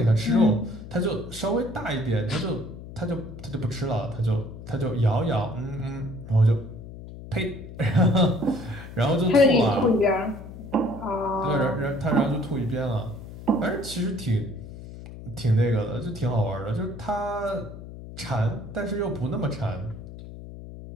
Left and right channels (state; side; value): noise; left; hum, 13 dB below the sound